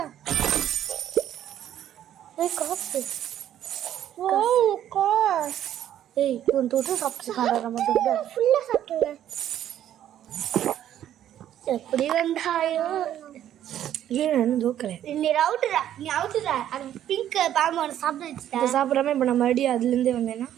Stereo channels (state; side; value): quieter; left; 11.2 dB